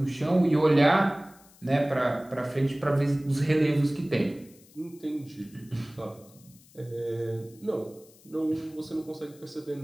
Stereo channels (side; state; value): left; noise; hiss, 26 dB below the sound